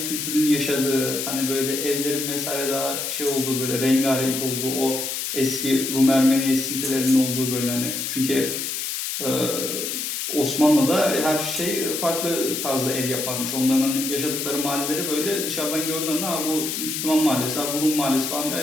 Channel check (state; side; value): noise; left; hiss, 3 dB below the sound